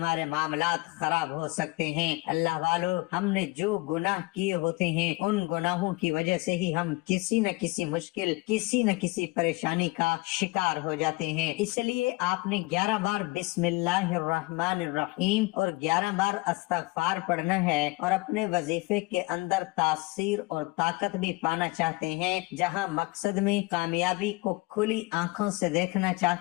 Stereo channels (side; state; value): right; quieter; 23.2 dB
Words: معاملات خراب ہو سکتے ہیں۔ اللہ والو، ہم نے جو گناہ کیے ہوتے ہیں ان گناہوں کی وجہ سے ہی ہم کسی نہ کسی مشکل، کسی نہ کسی پریشانی کا شکار ہو جاتے ہیں۔ اس لیے آپ نے 11 بار بسم اللہ الرحمن الرحیم اور 11 بار استغفار پڑھنا ہے، اور اپنے وظیفے کے اندر تاثیر اور طاقت بھی پانا چاہتے ہیں، جہاں مقصد میں کامیابی کو کھلی آنکھوں سے دیکھنا